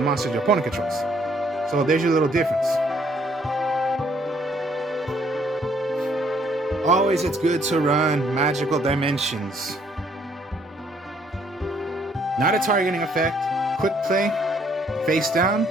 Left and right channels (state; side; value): normal; both; correlation 0.66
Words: monsters your opponent controls. So there's your little difference. Always it's good to run Magical Dimensions. Not a targeting effect. Quick play, face down.